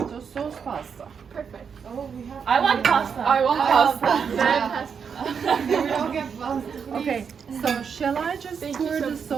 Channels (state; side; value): quieter; left; 6.6 dB